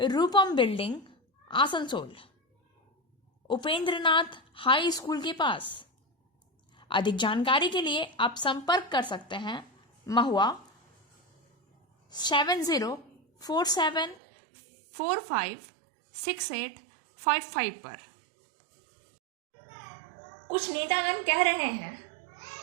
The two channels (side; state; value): left; drops out; at 14.2 s